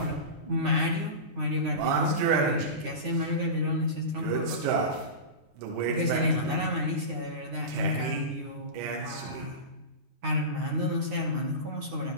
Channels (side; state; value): left; late; 9.7 ms